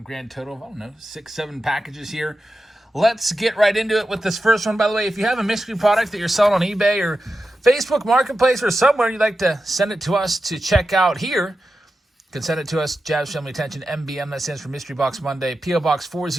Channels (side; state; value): both; normal; correlation 0.91